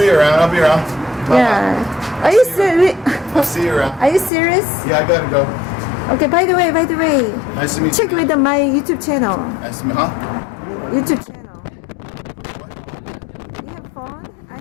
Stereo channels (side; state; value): right; drops out; at 4.3 s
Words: around. Bye-bye. Yeah. Are you serious? I'll see you around. Are you serious? Yeah, I gotta go. Okay. By the way, Nice to meet check you. with my YouTube channel. Nice to meet you. Huh? YouTube channel. You have phone? I